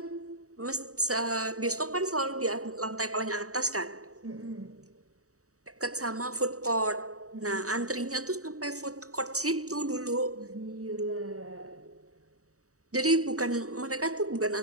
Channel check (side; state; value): left; late; 0.65 ms